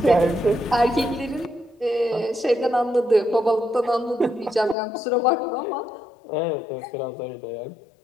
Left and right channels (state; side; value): drops out; right; at 4.8 s